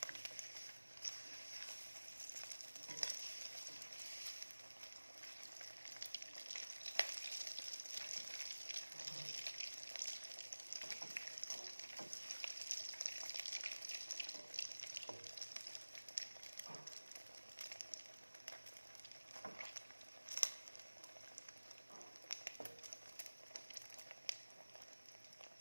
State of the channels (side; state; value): both; inverted; correlation -1.00